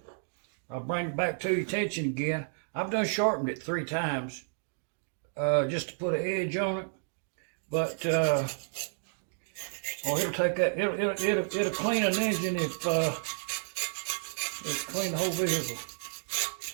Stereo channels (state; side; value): silent; left; digital silence